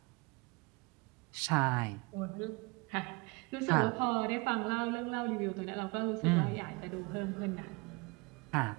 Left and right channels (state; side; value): quieter; left; 27.6 dB